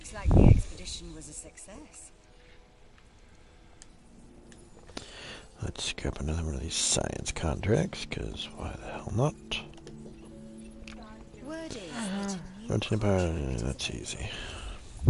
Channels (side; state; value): both; identical; correlation 1.00